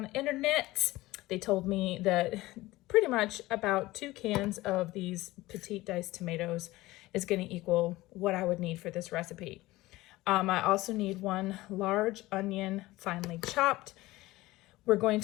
the internet, they told me that pretty much about 2 cans of these petite diced tomatoes is going to equal what I would need for this recipe. I also need 1 large onion finely chopped. We're going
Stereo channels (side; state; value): right; quieter; 18.6 dB